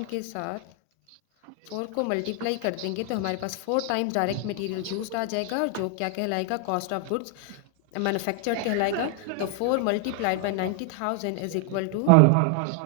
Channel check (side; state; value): both; different; correlation 0.00